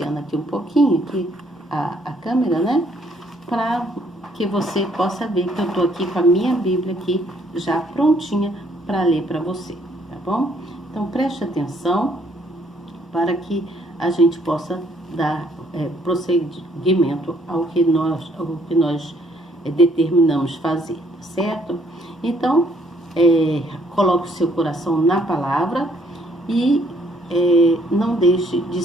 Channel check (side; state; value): both; normal; correlation 0.66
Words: aqui um pouquinho aqui a câmera, para que você possa ver que eu estou aqui com a minha Bíblia aqui já prontinha para ler para você, tá bom? Então preste atenção para que a gente possa dar prosseguimento ao que nós determinamos fazer, certo? Então, coloque o seu coração na palavra e não deixe de